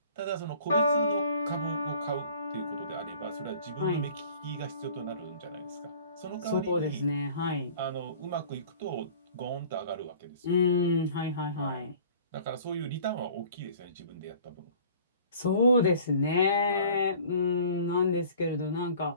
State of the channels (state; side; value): inverted; both; correlation -0.48